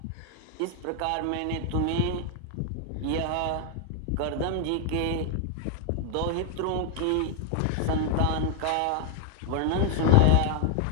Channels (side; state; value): both; different; correlation 0.00